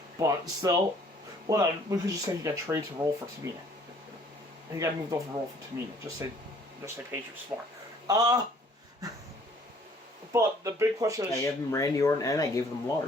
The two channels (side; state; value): both; normal; correlation 0.58